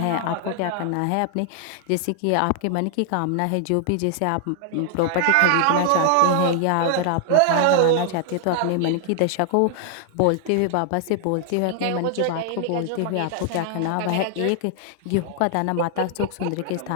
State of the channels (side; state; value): both; different; correlation 0.00